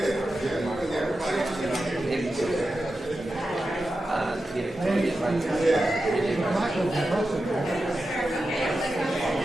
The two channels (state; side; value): normal; both; correlation 0.91